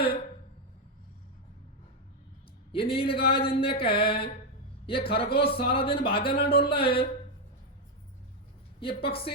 ये नीलगाय जिनने कहे, ये खरगोश सारा दिन भागा ना डोल रहा है, ये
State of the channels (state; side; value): normal; both; correlation 0.04